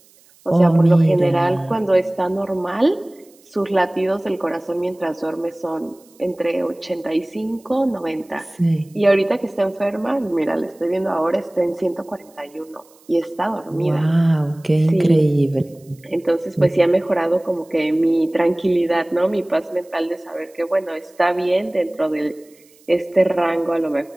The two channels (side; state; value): right; noise; hiss, 29 dB below the sound